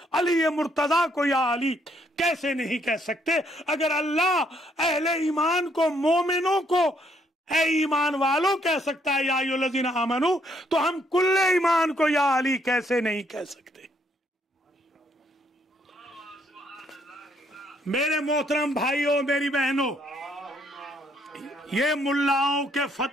علی مرتضیٰ کو یا علی کیسے نہیں کہہ سکتے؟ اگر اللہ اہل ایمان کو، مومنوں کو اے ایمان والوں کہہ سکتا ہے یا ایھا الذین آمنوا، تو ہم کل ایمان کو یا علی کیسے نہیں کہہ سکتے؟ میرے محترم بھائیوں، میری بہنوں، یہ ملاؤں کے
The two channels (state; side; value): normal; both; correlation 0.70